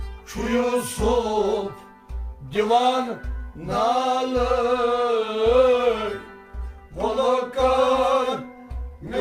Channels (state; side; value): identical; both; correlation 1.00